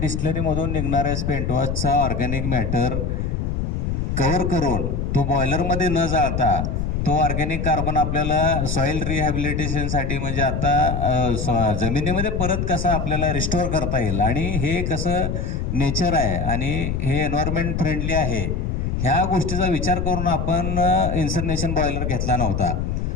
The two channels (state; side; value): noise; left; rumble, 1 dB below the sound